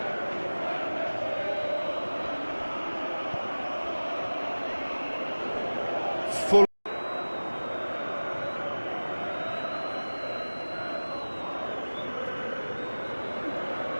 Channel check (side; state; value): both; inverted; correlation -1.00